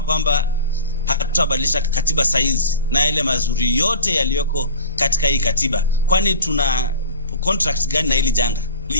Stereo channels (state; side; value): inverted; both; correlation -0.38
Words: kwamba hatutabadilisha katiba saizi na ile mazuri yote yaliyoko katika hii katiba, kwani tuna contract gani na hili janga?